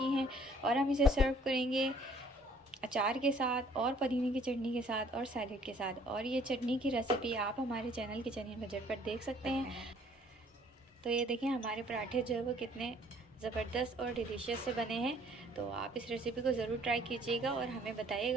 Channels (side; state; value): both; normal; correlation 0.59